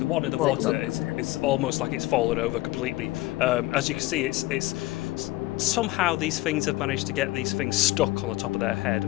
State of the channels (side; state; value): right; quieter; 18.7 dB